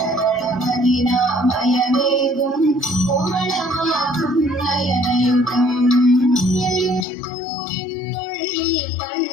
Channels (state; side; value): drops out; right; at 7.1 s